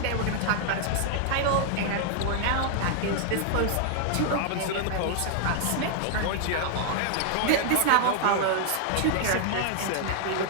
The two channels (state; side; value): different; both; correlation 0.00